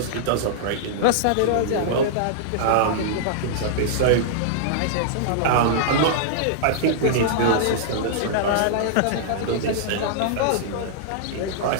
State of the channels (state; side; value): different; both; correlation -0.02